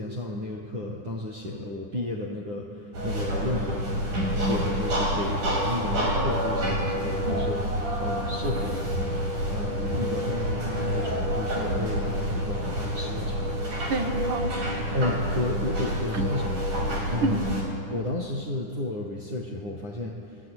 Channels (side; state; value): left; late; 10 ms